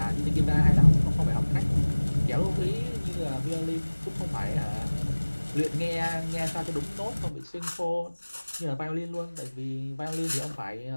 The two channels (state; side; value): inverted; both; correlation -1.00